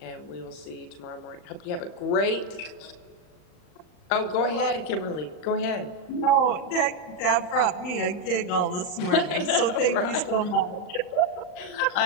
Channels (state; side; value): late; right; 39 ms